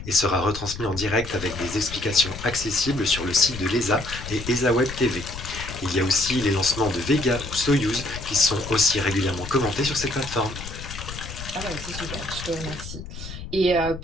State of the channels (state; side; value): noise; left; rumble, 11 dB below the sound